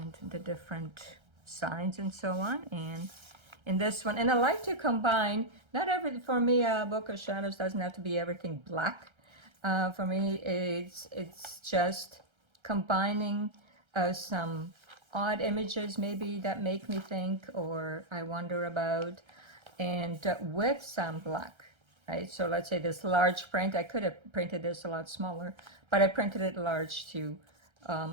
the different signs and so on. And in this one, and I like to combine, not every, for me a book of shadows doesn't have to be everything black. For me it's just combining some odd images maybe that make me think or I wonder about, and with some black, right? So let's say this large print, I could have printed this a lot smaller, but I printed it large to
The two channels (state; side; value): late; left; 1.3 ms